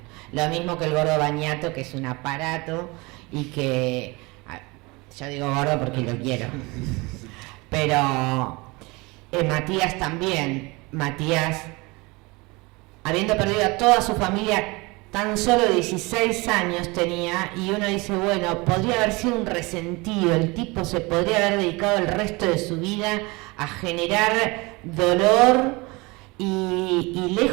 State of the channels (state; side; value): quieter; left; 24.9 dB